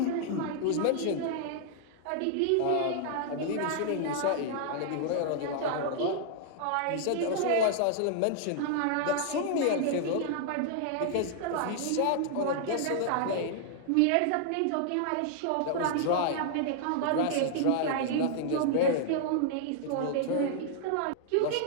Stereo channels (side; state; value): both; different; correlation -0.01